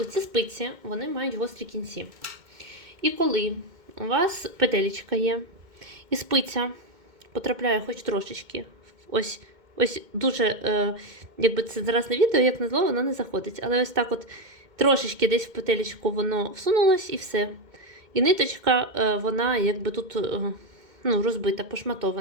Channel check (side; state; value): left; late; 2.2 ms